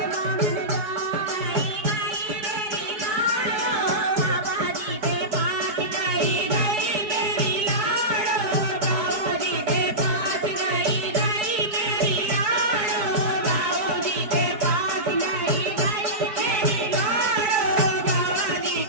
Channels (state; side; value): late; left; 4.7 ms